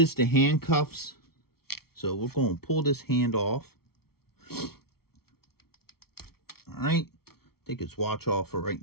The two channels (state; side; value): late; right; 0.94 ms